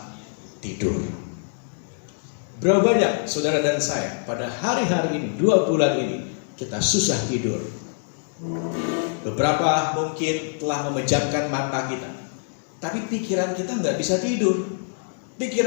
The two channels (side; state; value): right; silent; 62 dB below the other